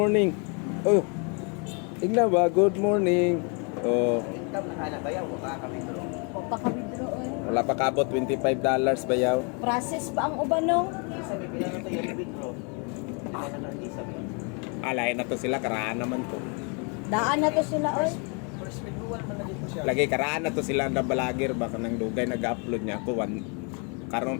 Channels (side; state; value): right; quieter; 35.5 dB